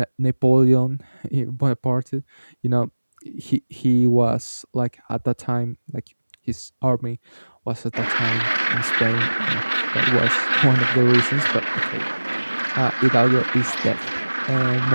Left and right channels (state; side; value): inverted; both; correlation -1.00